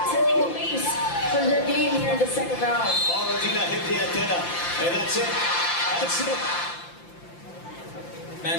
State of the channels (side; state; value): right; late; 5.8 ms